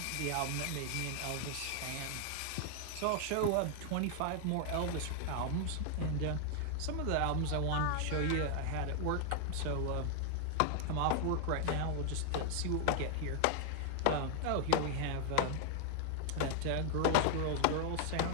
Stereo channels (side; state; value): both; different; correlation 0.00